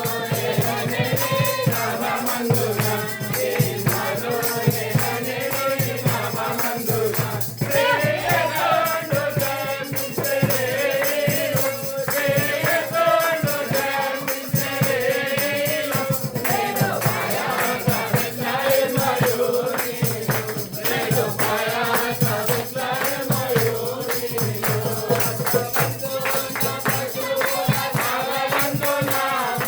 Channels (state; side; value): identical; both; correlation 1.00